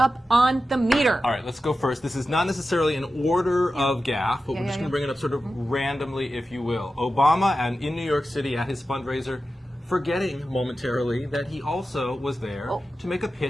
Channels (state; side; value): normal; both; correlation 0.92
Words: on the meter? All right, let's go first. This is not necessarily an order of gaffe, but we're just going to bring it up sort of randomly, if you will. Obama, and in New York City at his fundraiser, forgetting momentarily that he also was there to make a